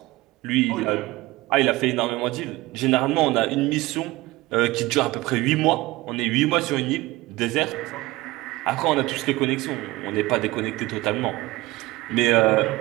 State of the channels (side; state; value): left; quieter; 19.8 dB